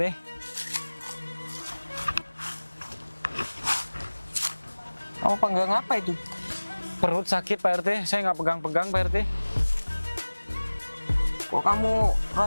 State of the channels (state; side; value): inverted; both; correlation -1.00